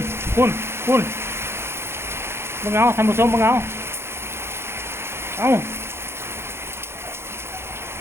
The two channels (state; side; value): late; left; 0.12 ms